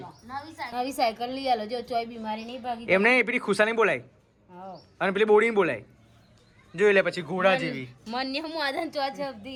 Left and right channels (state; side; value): identical; both; correlation 1.00